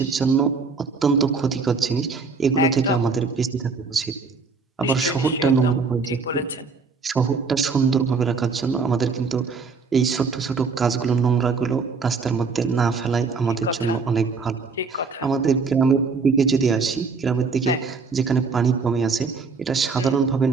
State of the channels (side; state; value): left; quieter; 4.7 dB